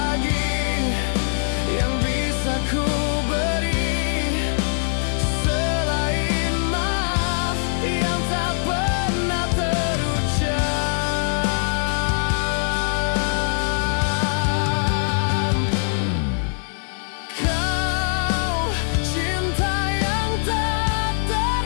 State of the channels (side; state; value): right; silent; digital silence